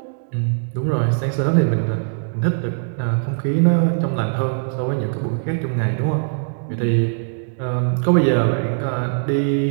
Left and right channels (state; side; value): silent; left; digital silence